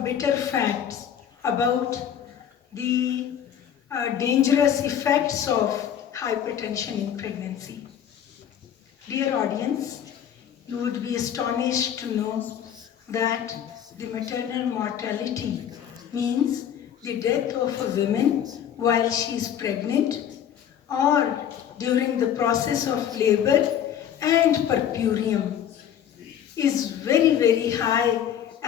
bitter facts about the dangerous effects of hypertension in pregnancy. Dear audience, you would be astonished to know that the maternal mortality means the death of a woman while she is pregnant or during the process of labor and puerperium is very, very high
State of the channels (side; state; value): right; quieter; 9.5 dB